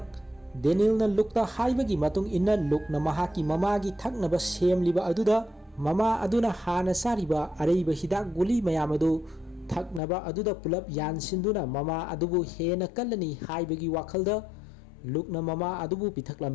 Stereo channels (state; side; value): drops out; right; at 10.0 s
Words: Daniel ना लुकता हाइबगी मतुंग इन्ना लुकना महाकी ममागी थकनबा सेमलिबा अदुदा ममा अदुना हाना सारिबा अरैबा हिदाक गुली मयामदु थकनबा अदुदा पुलप यानसिंदुना ममा अदुबु हेना कल्लनी हाइबगी वखलदा लुकना ममा अदुबु